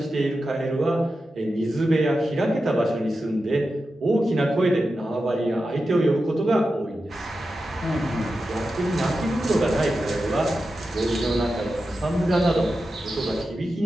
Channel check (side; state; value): both; normal; correlation 0.91